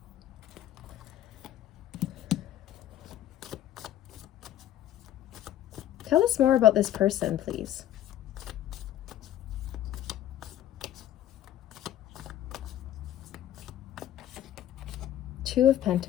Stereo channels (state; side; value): quieter; right; 12.0 dB